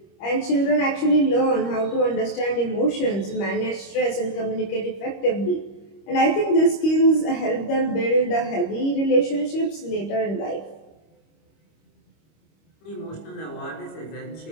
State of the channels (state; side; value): late; right; 25 ms